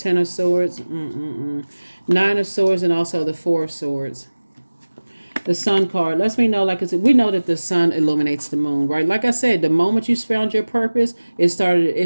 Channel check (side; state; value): both; inverted; correlation -1.00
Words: of Swords, Nine of Swords, and also the Four of Swords. The Sun card lets me know, like I said, we know that the sun illuminates the moon, right? Like I said, the moment you found your purpose, it